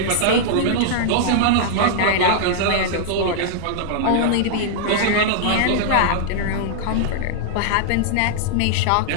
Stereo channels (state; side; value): different; both; correlation -0.01